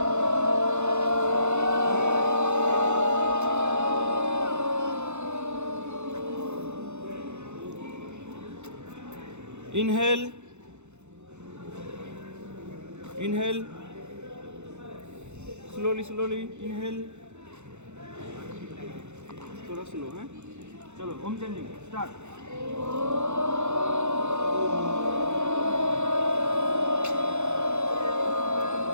Inhale. Inhale. Slowly, slowly. Inhale. थोड़ा slow है. चलो ओम chanting start.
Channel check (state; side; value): late; left; 0.83 ms